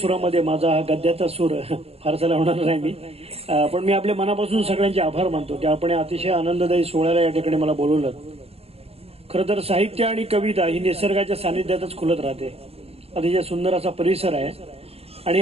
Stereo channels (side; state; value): left; late; 0.29 ms